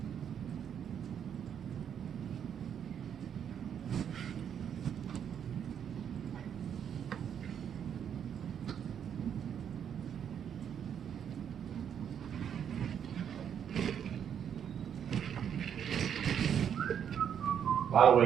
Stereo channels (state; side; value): quieter; left; 8.5 dB